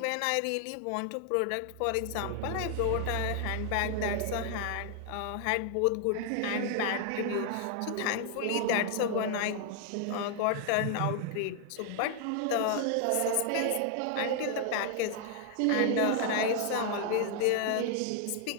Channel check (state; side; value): different; both; correlation 0.00